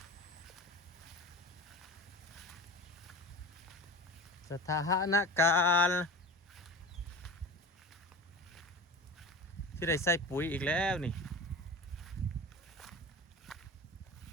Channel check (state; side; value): normal; both; correlation 0.33